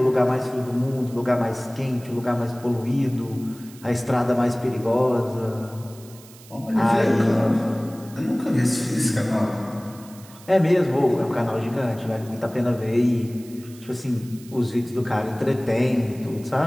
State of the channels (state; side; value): noise; right; hiss, 22 dB below the sound